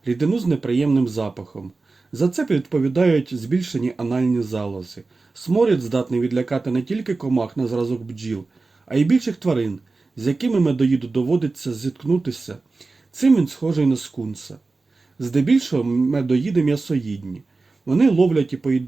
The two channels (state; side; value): quieter; left; 3.7 dB